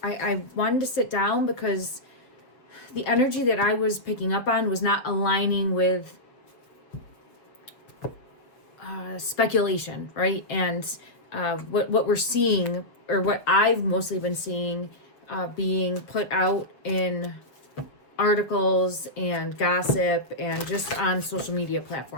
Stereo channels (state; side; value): late; right; 7.2 ms